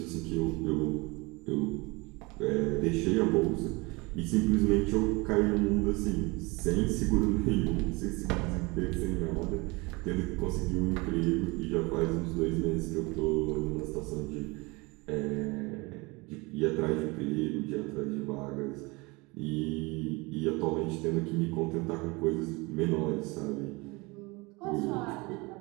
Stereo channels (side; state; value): left; quieter; 25.5 dB